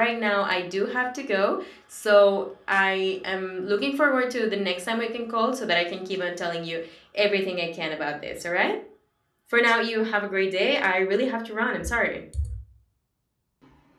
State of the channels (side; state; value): both; identical; correlation 1.00